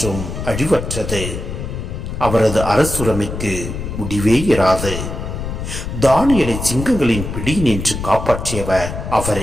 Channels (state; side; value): noise; left; rumble, 6 dB below the sound